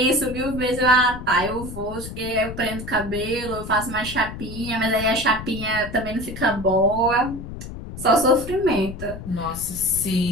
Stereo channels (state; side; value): noise; left; rumble, 10 dB below the sound